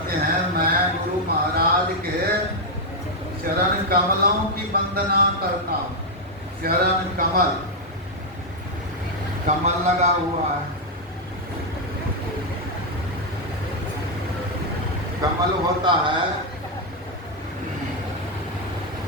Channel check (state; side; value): normal; both; correlation 0.00